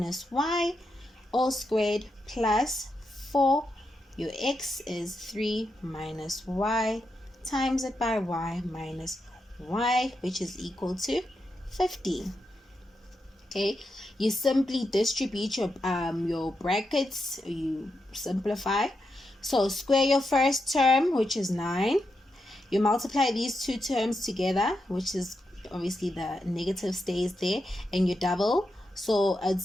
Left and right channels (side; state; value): both; normal; correlation 0.86